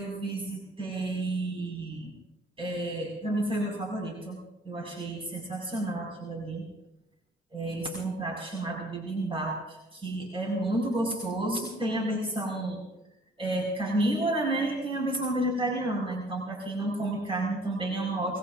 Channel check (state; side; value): normal; both; correlation 0.56